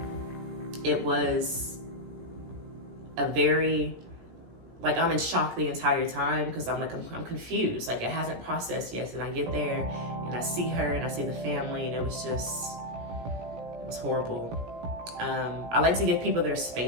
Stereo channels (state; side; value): late; left; 17 ms